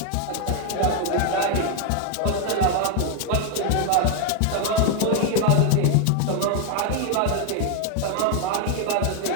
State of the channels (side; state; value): both; different; correlation 0.01